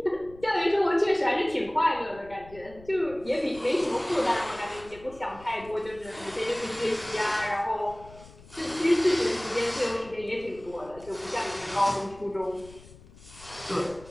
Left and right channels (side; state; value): left; noise; rumble, 21 dB below the sound